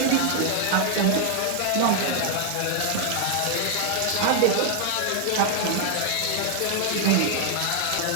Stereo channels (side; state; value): both; different; correlation 0.00